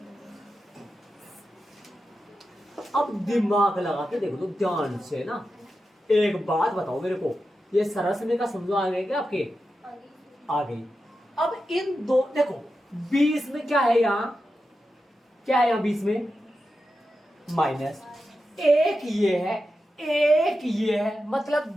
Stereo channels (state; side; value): normal; both; correlation 0.90